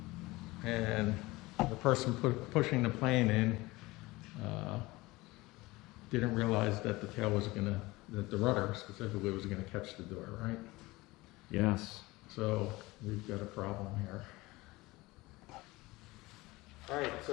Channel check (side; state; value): right; quieter; 20.9 dB